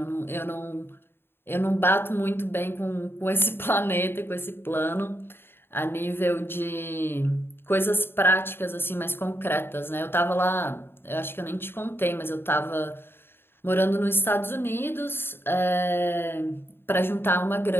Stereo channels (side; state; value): right; late; 0.11 ms